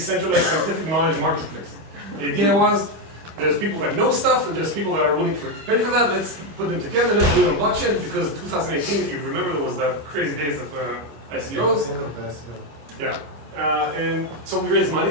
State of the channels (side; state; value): left; late; 25 ms